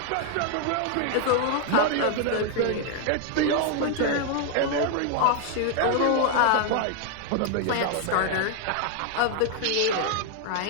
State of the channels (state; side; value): different; both; correlation 0.00